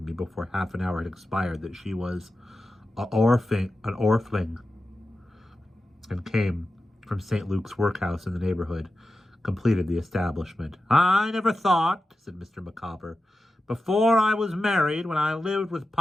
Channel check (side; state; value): both; normal; correlation 0.92